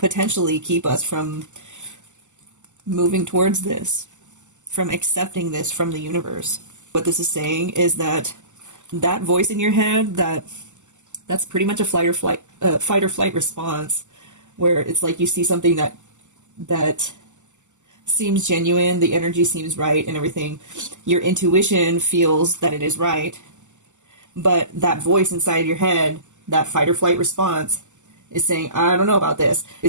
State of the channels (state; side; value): late; left; 0.84 ms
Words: keep us from moving towards this, from accepting this from the universe. What this is saying is that that voice in your head, that's pretty much a fight or flight response, where it's like you see something that seems genuine, the energy seems right and everything. Your intuition feels that it is right, but that voice inside your head, that fight or flight response, is saying, I don't know about this.